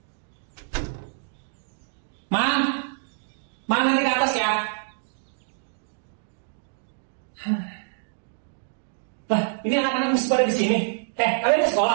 kelas ya. Lah, ini anak-anak masih pada di sini. Kalian ke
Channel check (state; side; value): silent; left; digital silence